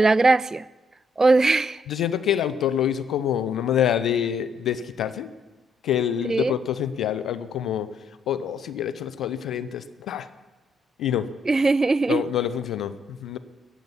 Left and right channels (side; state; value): both; normal; correlation 0.72